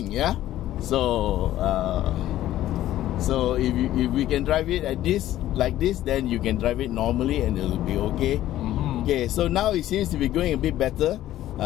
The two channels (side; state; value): right; quieter; 13.7 dB